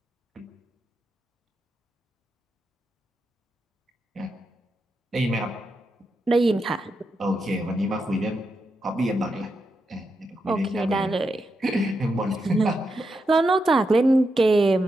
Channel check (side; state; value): both; normal; correlation 0.85